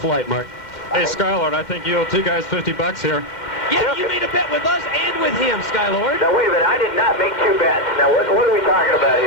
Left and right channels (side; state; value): right; late; 2.0 ms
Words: Mark. Hey, Skylord, I think you owe 2 guys $50 here. Yeah, you made a bet with us and with him, Skylord. Now, wait a minute. I did not make 2 bets. Now, what are we talking about